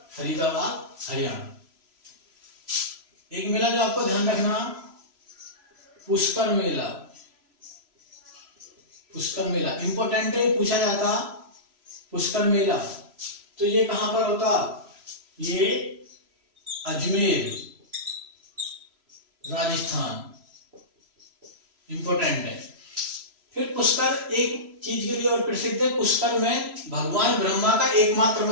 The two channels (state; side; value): late; left; 3.0 ms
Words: फरीदाबाद, हरियाणा। एक मेला जो आपको ध्यान रखना, पुष्कर मेला, पुष्कर मेला इंपॉर्टेंट है, पूछा जाता पुष्कर मेला। तो ये कहां पर होता, ये अजमेर राजस्थान, इंपॉर्टेंट है। फिर पुष्कर एक चीज के लिए और प्रसिद्ध है, पुष्कर में भगवान ब्रह्मा का एकमात्र